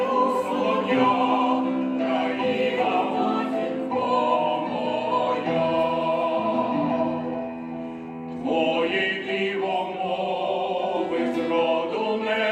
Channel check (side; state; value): both; identical; correlation 1.00